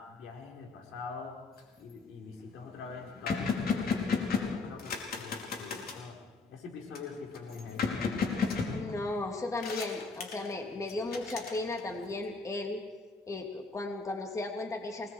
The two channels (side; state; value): right; quieter; 3.8 dB